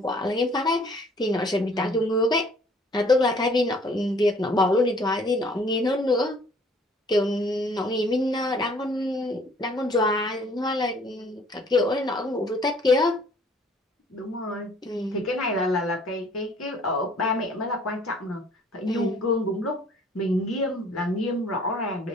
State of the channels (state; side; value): normal; both; correlation 0.57